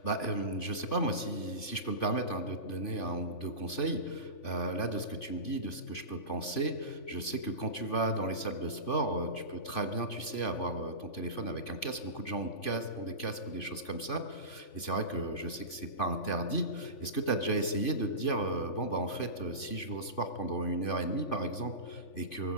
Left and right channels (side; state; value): right; late; 3.5 ms